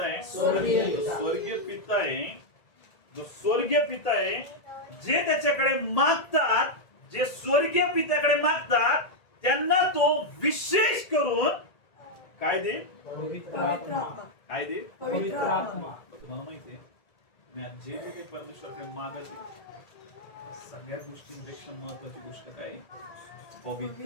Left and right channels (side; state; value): right; late; 1.8 ms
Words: आहे? स्वर्गीय पिता आहे. जो स्वर्गीय पिता आहे, जे त्याच्याकडे मागतात, जे स्वर्गीय पित्याकडे मागतात त्यांना तो विशेष करून काय देईल? काय देईल? तुम्हाला माहितीये, मी आज जे काही परमेश्वराकडे मागत आहे सगळ्या गोष्टींपेक्षा महत्वाची गोष्ट काय?